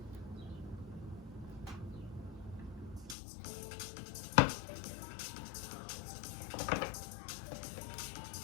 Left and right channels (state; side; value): drops out; right; at 3.2 s